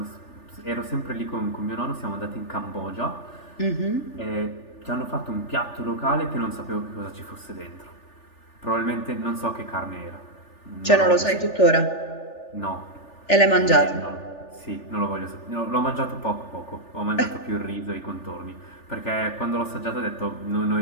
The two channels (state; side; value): late; right; 3.4 ms